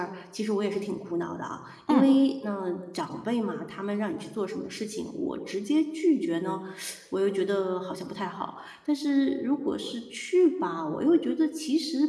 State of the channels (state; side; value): identical; both; correlation 1.00